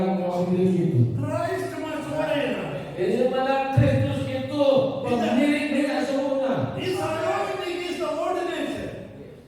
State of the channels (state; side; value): identical; both; correlation 1.00